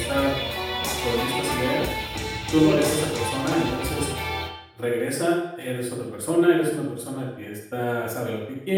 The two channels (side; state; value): both; identical; correlation 1.00